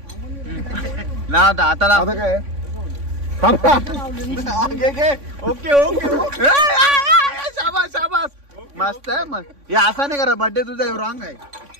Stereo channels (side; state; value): left; late; 3.5 ms